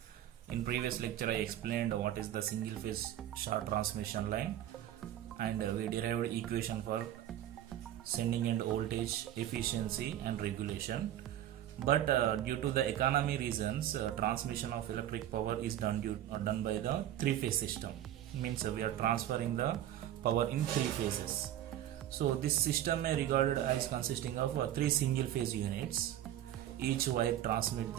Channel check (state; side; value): quieter; left; 12.1 dB